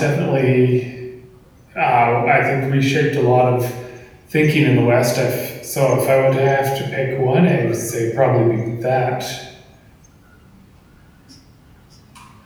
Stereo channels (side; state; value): both; identical; correlation 1.00